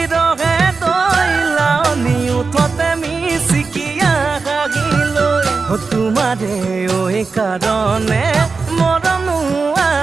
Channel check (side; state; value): left; quieter; 4.5 dB